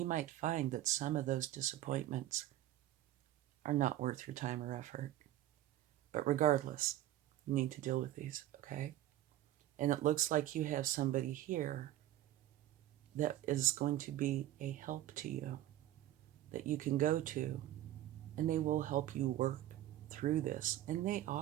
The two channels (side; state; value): left; quieter; 14.0 dB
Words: might find that some of those disappointments are not worth your time or effort. But regardless, you need to deal with these, okay? And it looks like you have somebody here that is going to be a help to you, that you can go to, and they will help you work through this. And they